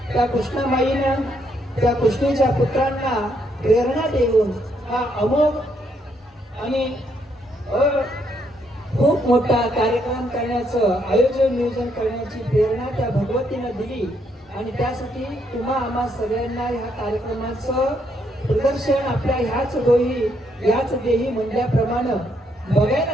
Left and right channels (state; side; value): normal; both; correlation 0.74